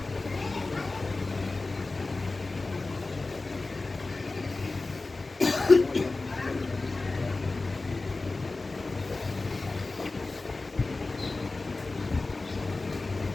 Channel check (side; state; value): right; quieter; 3.4 dB